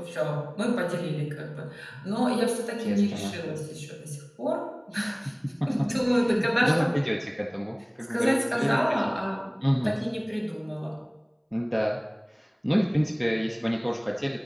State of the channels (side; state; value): both; identical; correlation 1.00